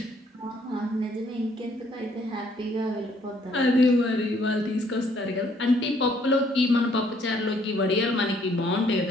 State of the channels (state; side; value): normal; both; correlation 0.65